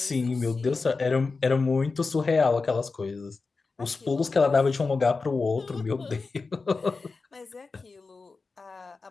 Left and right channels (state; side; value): quieter; right; 4.2 dB